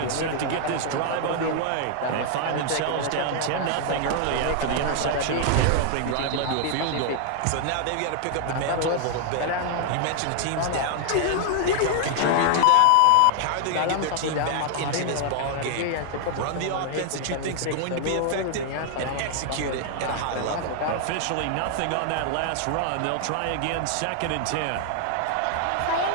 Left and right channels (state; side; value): different; both; correlation 0.00